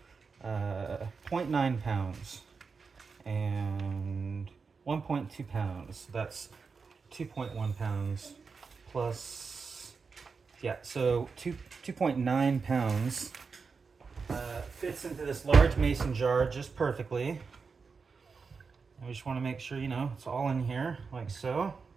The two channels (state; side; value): quieter; left; 5.0 dB